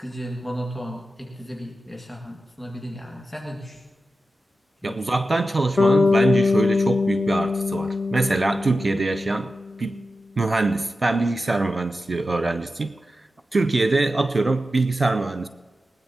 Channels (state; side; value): normal; both; correlation 0.92